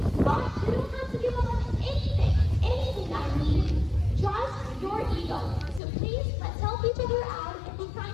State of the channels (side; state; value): right; drops out; at 5.8 s